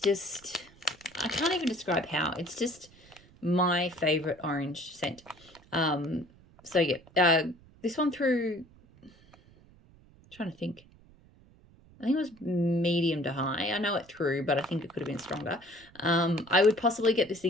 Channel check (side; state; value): right; noise; rumble, 26 dB below the sound